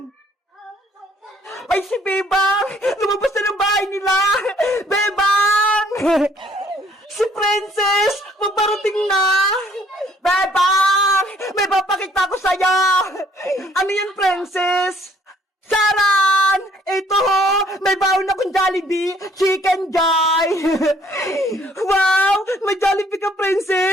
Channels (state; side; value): normal; both; correlation 0.62